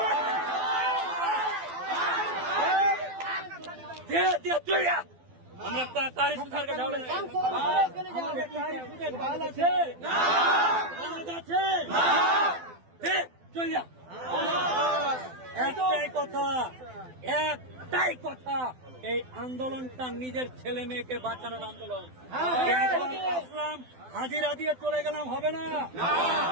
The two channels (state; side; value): late; left; 12 ms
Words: আমরা কারি সুধারকে ঢালে আছে চল যা। একটাই কথা, এই আন্দোলনটা নিজের ছেলে মেয়েকে বাঁচানোর আন্দোলন। আসলাম হাজিরা দিয়ে চলে গেলাম হবে না,